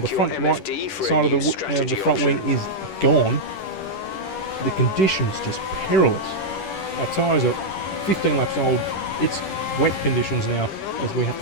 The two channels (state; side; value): late; right; 10 ms